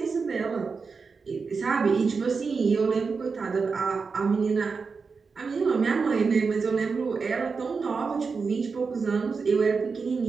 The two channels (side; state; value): left; quieter; 4.9 dB